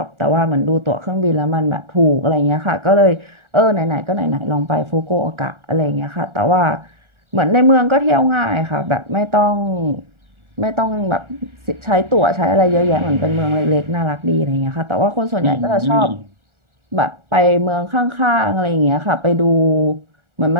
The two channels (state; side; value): late; left; 1.4 ms